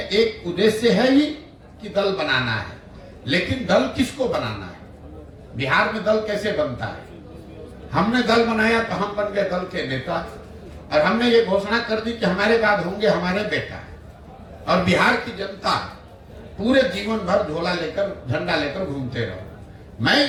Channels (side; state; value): both; identical; correlation 1.00